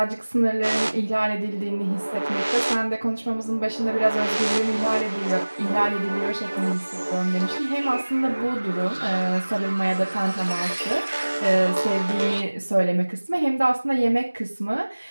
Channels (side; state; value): both; inverted; correlation -1.00